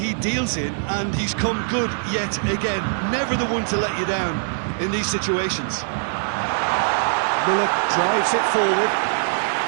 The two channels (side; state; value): left; silent; digital silence